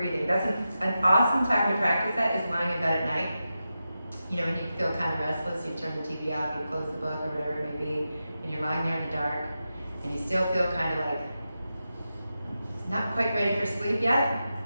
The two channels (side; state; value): both; inverted; correlation -0.90